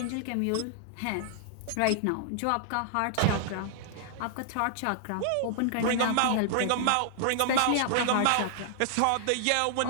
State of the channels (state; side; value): different; both; correlation -0.01